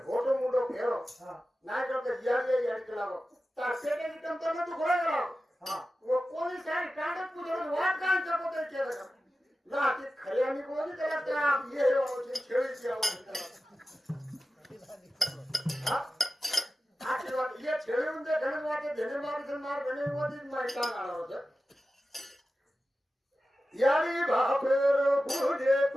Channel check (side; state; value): both; normal; correlation 0.94